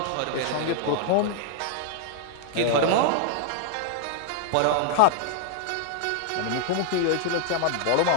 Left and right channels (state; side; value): different; both; correlation 0.00